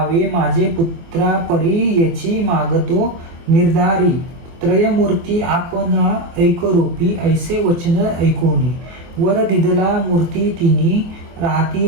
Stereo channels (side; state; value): left; late; 23 ms